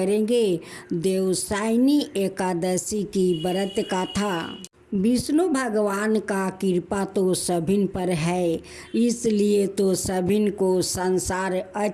देवसायनी एकादशी की व्रत कथा। विष्णु भगवान का कृपा तो सभी पर है, इसलिए तो सभी को संसार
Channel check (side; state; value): both; identical; correlation 1.00